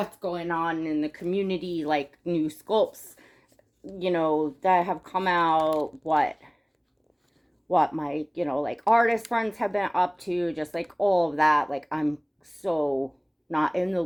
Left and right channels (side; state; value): both; identical; correlation 1.00